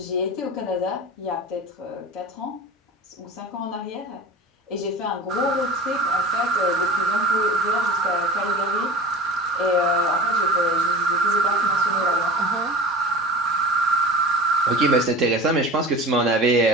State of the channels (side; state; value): both; normal; correlation 0.37